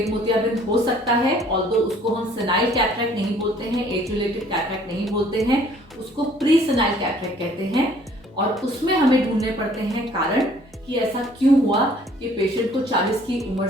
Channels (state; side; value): normal; both; correlation 0.57